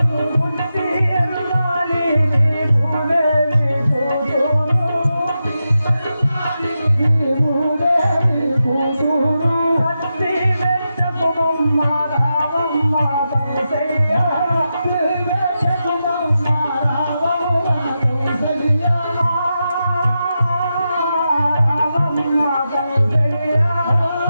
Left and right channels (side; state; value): both; inverted; correlation -0.89